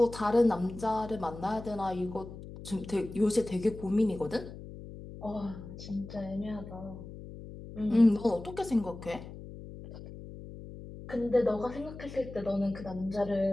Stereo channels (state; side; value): noise; left; hum, 13 dB below the sound